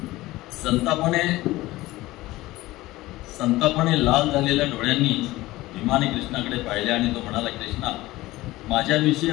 संतापाने लाल झालेल्या डोळ्यांनी भीमाने कृष्णाकडे पाहिले आणि तो म्हणाला, कृष्णा, माझ्याविषयी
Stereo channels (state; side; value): quieter; right; 18.2 dB